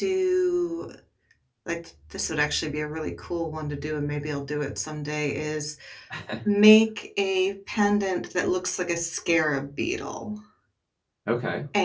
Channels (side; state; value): both; identical; correlation 1.00